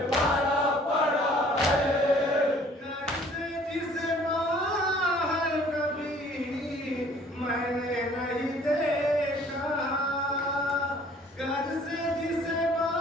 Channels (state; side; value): normal; both; correlation 0.55